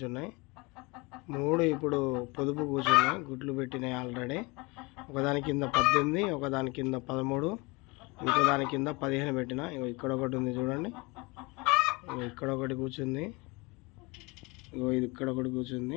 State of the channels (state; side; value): quieter; right; 26.1 dB